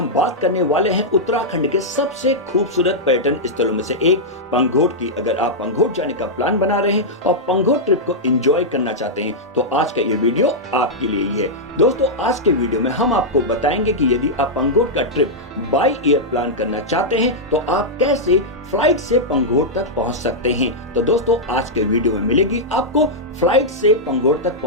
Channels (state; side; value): normal; both; correlation -0.07